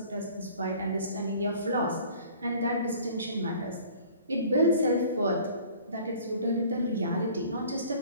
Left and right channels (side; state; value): both; inverted; correlation -0.49